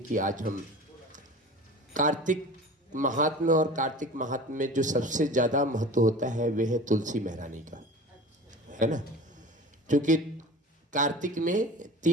आज हम कार्तिक महात्म्य और कार्तिक महात्म्य में जो सबसे ज़्यादा महत्व होता है वह है तुलसी महारानी का, है ना। क्योंकि कार्तिक में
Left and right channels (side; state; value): both; normal; correlation 0.37